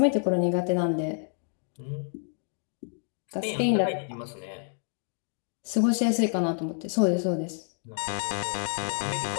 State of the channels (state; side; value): silent; right; 59 dB below the other